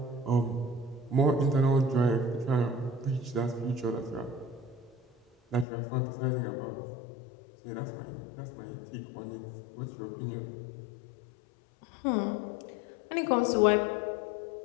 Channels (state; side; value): drops out; right; at 5.7 s